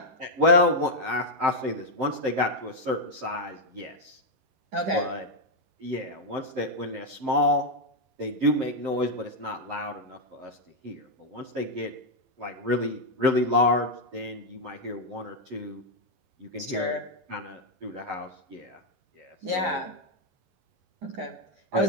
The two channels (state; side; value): late; left; 11 ms